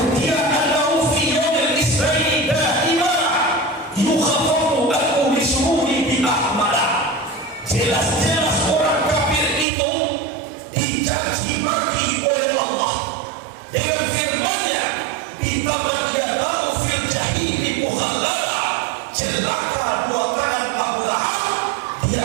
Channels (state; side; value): drops out; left; at 9.7 s